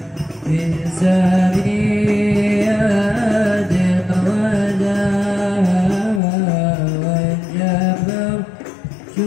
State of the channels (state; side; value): drops out; right; at 6.2 s